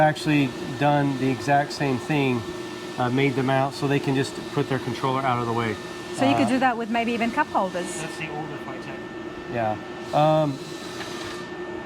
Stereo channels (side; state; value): both; identical; correlation 1.00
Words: done the exact same thing, made them out so they can just put their controller out of the way. So you could do that with maybe even cup holders. That's the older Phytech. Yeah.